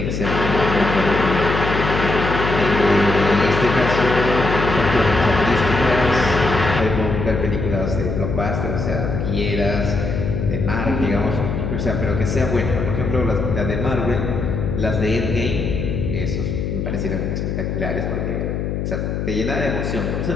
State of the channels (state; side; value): noise; left; hum, 2 dB below the sound